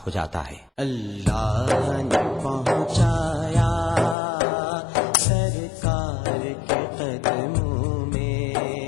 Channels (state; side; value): drops out; right; at 4.2 s